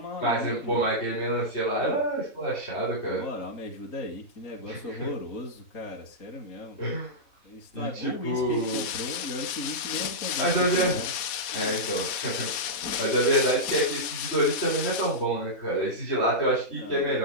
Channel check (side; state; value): right; late; 4.1 ms